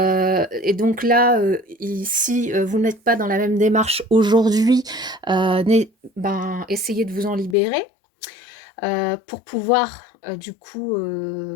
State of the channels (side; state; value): right; drops out; at 7.6 s